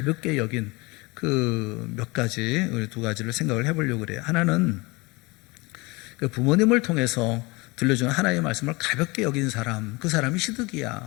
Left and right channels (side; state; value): right; quieter; 25.1 dB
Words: 여긴 그 몇 가지, 우리 두 가지를 생각을 해보려고 그래요. 하나는 그 부모님을 통해서 들려주는 하나님의 말씀을 가볍게 여긴 사람, 그 사람이